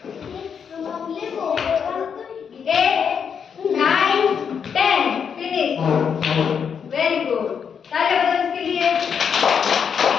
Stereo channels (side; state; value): right; quieter; 7.0 dB